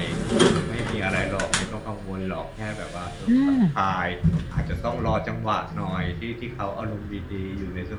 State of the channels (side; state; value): both; identical; correlation 1.00